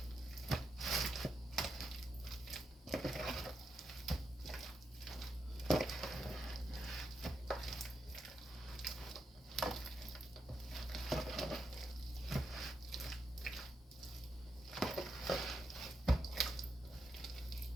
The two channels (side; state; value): both; normal; correlation 0.83